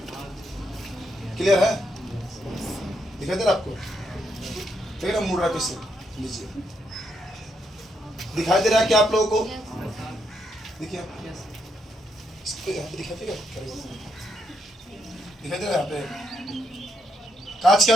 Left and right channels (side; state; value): both; normal; correlation 0.78